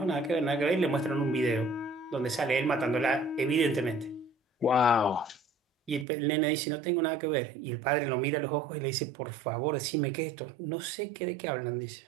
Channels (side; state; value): left; drops out; at 6.1 s